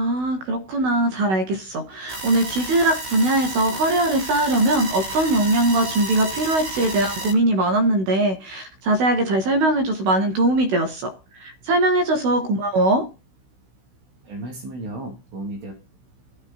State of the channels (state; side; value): late; left; 16 ms